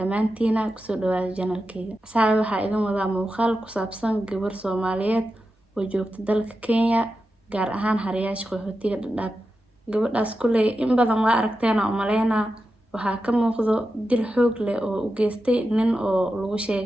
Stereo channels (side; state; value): both; normal; correlation 0.90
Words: kusoo dhawaada channelkayga. Asxaabi waxaa idin wadaa muuqaal ku saabsan gabar Soomaaliyeed oo joogta dalka Kenya gaar ahaan Haryaasha qaxootiga Dadaab. gabadhaas kulay in badan waa aragteena oo maleynaa waxaa ka muuqdo dil xoog leh oo u geystay nin oo lagu